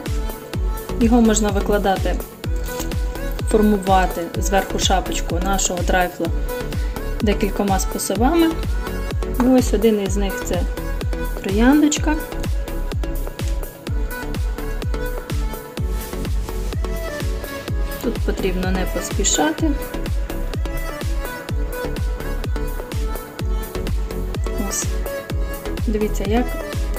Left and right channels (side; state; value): both; identical; correlation 1.00